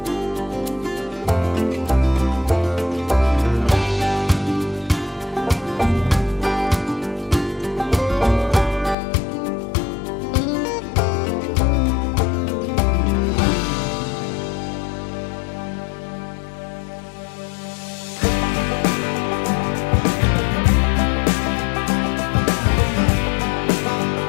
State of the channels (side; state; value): right; drops out; at 9.0 s